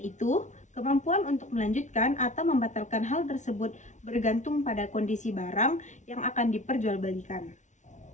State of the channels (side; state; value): right; late; 0.36 ms